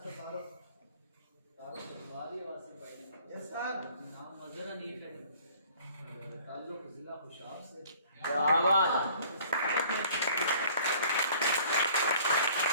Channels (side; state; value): both; inverted; correlation -0.53